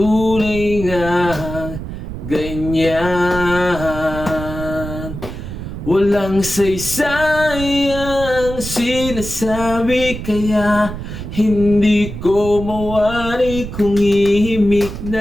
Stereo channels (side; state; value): right; noise; rumble, 8 dB below the sound